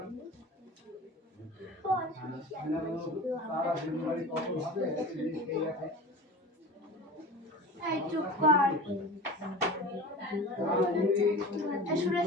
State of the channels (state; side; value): normal; both; correlation 0.34